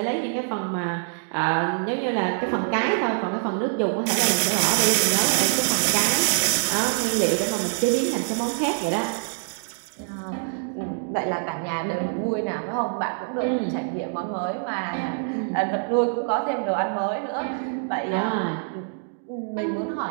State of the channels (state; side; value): silent; left; digital silence